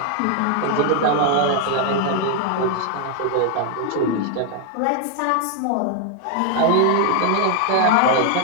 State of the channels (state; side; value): different; both; correlation 0.00